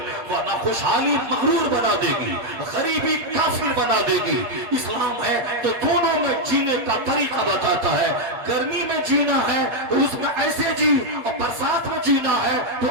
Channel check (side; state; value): left; late; 8.5 ms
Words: ورنہ خوشحالی مغرور بنا دے گی، غریبی کافر بنا دے گی. اسلام ہے تو دونوں میں جینے کا طریقہ بتاتا ہے. گرمی میں جینا ہے تو اس میں ایسے جی، اور برسات میں جینا ہے تو